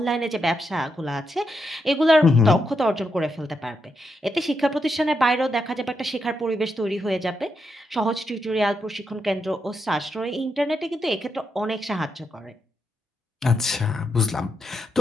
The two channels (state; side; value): normal; both; correlation 0.82